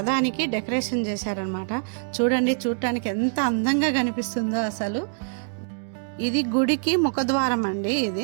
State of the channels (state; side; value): silent; left; 62 dB below the other